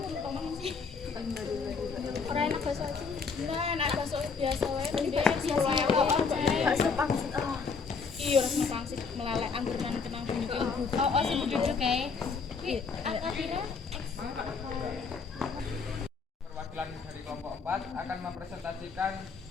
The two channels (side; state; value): right; quieter; 5.1 dB